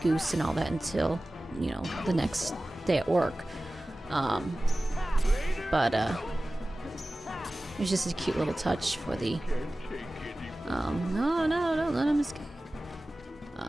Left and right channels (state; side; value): normal; both; correlation 0.97